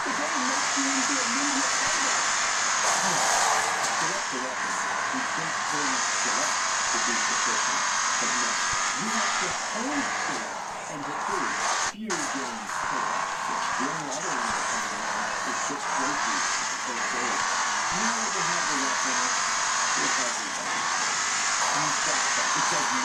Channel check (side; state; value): both; identical; correlation 1.00